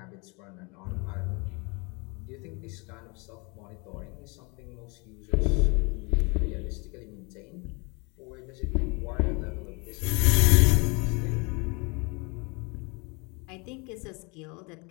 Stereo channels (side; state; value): right; quieter; 30.1 dB